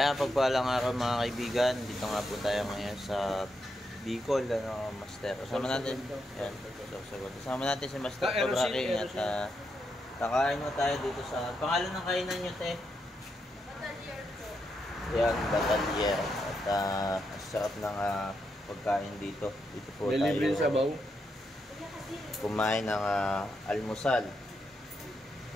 pagpalang araw mga kaibigan, dito nga po tayo ngayon sa Bicol, Master. Kasama natin, yan, kasama natin si Master Cobra King at kakain mo tayo dito sa, pangalan ng kainan nyo, te? Batalier po. Yan, Batalier. At sarap ng pagkain dito. Dito po may tayo. libre sabaw. Kumain ng almusal.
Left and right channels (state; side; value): normal; both; correlation 0.82